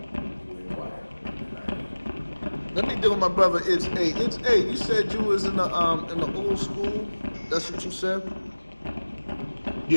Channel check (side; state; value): both; inverted; correlation -1.00